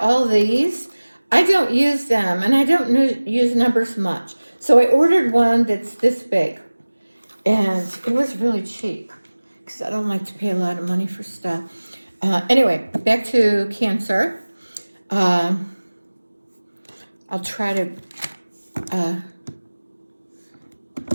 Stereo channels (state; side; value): inverted; both; correlation -1.00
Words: all these? I don't use them, and I don't use numbers much. So I ordered one that's this big. And it was really cheap because I don't like to pay a lot of money for stuff. Anyway, back to Cancer. I'll try to,